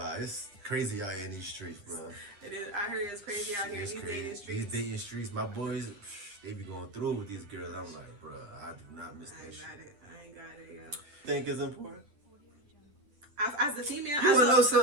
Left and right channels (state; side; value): late; left; 9.9 ms